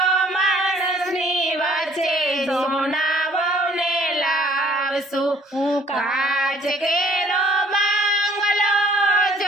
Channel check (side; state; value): both; normal; correlation 0.58